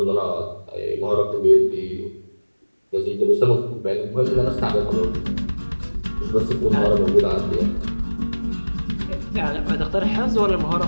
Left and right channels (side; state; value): both; inverted; correlation -1.00